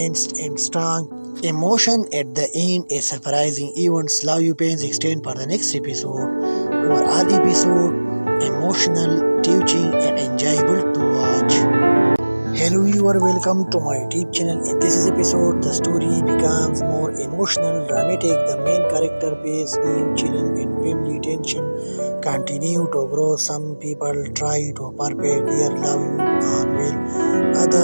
and strong emotion at the end. A surprising events, love you pains extend for the next episode. Overall episode emotional, teaching, and enjoyable to watch. Hello viewer, welcome to my YouTube channel. In this episode, the story becomes more emotional, dramatic. The main character face new children and family tension continue to grow. Some people try to perfect their love on will,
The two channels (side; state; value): both; inverted; correlation -1.00